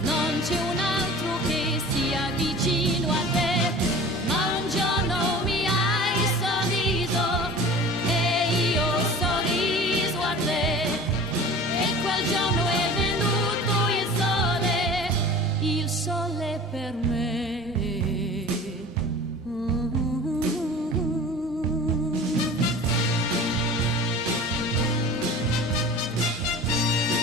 un altro che sia vicino a te. Ma un giorno mi hai sorriso e io ho sorriso a te, e quel giorno è venuto il sole per me.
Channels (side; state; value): both; normal; correlation 0.40